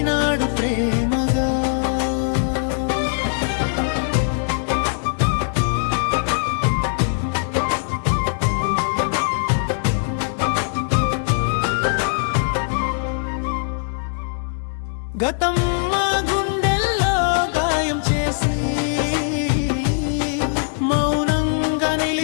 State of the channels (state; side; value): silent; right; digital silence